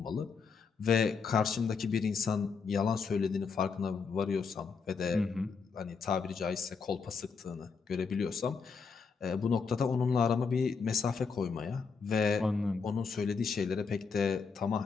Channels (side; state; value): right; quieter; 5.3 dB